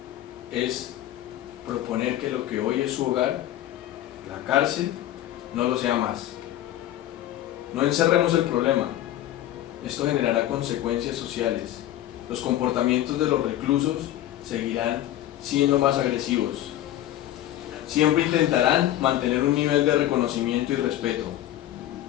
es proponer que lo que hoy es su hogar, la cárcel, no lo sea más. No encerremos el problema. Esto generará consecuencias sociales. Los comportamientos de los reclusos seguirán siendo más agresivos. Siempre intentarán mantener un nivel de reconocimiento y respeto,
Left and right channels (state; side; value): quieter; right; 13.2 dB